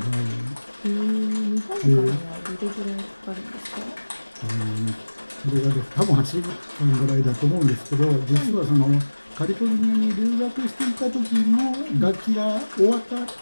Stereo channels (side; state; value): both; inverted; correlation -1.00